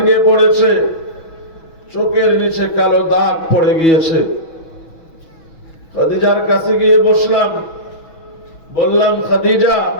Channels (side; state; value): right; late; 6.2 ms